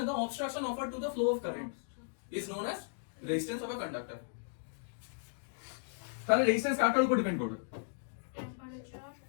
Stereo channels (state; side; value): silent; right; digital silence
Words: তো, obstruction offered to the flow of current is known as resistance of a conductor. তাহলে রেজিস্ট্যান্স কারটার উপর ডিপেন্ড করবে? Temperature,